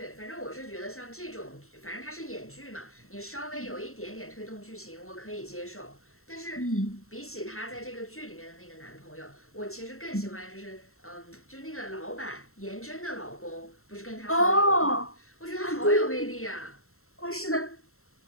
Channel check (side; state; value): right; late; 0.63 ms